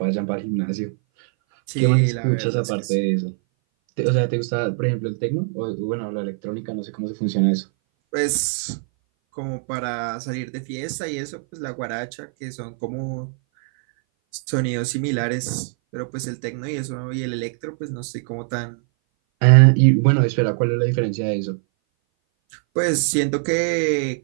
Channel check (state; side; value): silent; left; 59 dB below the other